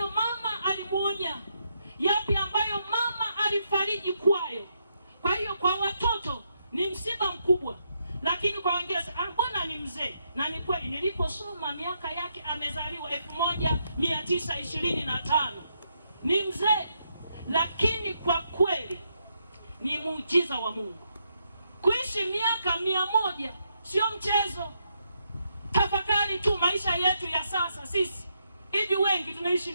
mama alimuonya, yapi ambayo mama alifariji kwayo. Kwa hiyo kwa watoto ni msiba mkubwa, lakini kwa wengine mbona mzee, na ni kweli niliposoma miaka yake amezaliwa 1925. Ni mzee, lakini kwa kweli ni muujiza wa Mungu. Kuishi miaka 100 sio mchezo. Tafakari tu maisha yetu ya sasa sisi. Hivi wengi tunaishi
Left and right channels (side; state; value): both; inverted; correlation -0.79